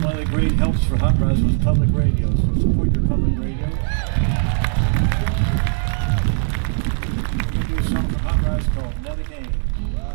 great helps for Hot Rise was public radio. So support your public radio. We're going to do a song from Hot Rise called Nellie, Kane.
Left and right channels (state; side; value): silent; left; digital silence